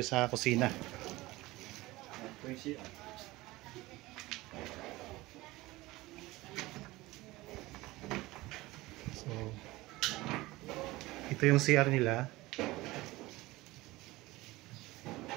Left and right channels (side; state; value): left; quieter; 19.6 dB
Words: sa kusina. Ito yung CR nila.